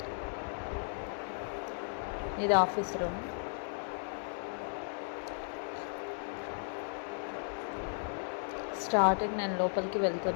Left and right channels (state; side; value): silent; right; digital silence